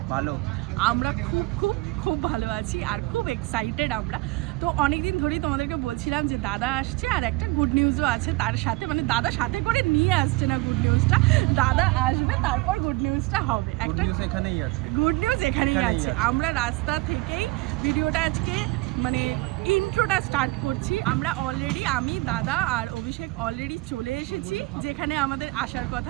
ভালো। আমরা খুব খুব খুব ভালো আছি আর খুব এক্সাইটেড আমরা। তো অনেকদিন ধরেই তোমাদেরকে বলছিলাম যে দাদা আসছে আর একটা গুড নিউজও আছে তার সাথে, মানে দাদা সাথে করে নিয়ে আসছে না গুড নিউজটা, দাদা আসবে তারপর গুড নিউজটা হবে। একটা গুড নিউজ এখানেই আছে, গুড নিউজ এখানেই আছে। আমরা রাস্তা থেকেই ভিডিওটা আজকে মানে ইন্ট্রোটা স্টার্ট করছি। আমরা অলরেডি, আমি, দাদা আর অভিষেক অলরেডি চলে এসেছি যেখানে আমাদের আসার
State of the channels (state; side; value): quieter; left; 21.9 dB